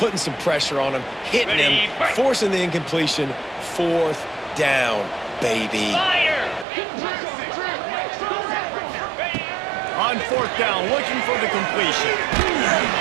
some pressure on him, hitting him, forcing the incompletion. Fourth down, baby. on fourth down, looking for the completion.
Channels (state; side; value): drops out; left; at 6.7 s